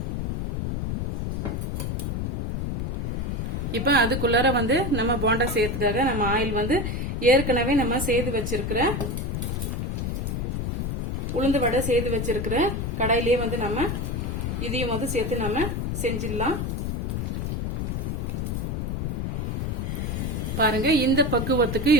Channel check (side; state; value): left; noise; rumble, 2 dB below the sound